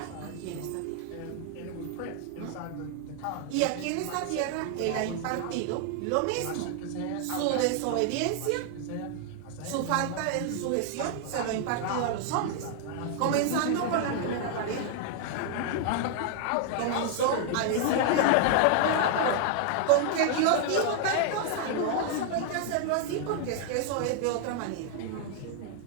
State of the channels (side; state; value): both; different; correlation 0.00